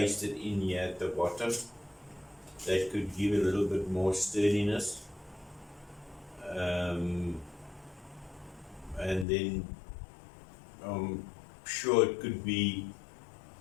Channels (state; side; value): drops out; right; at 9.2 s